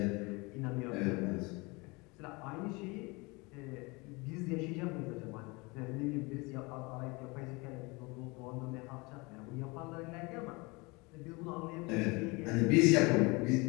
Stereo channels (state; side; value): quieter; right; 26.4 dB